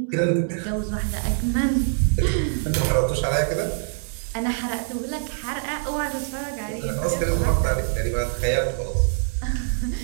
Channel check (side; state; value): left; silent; 58 dB below the other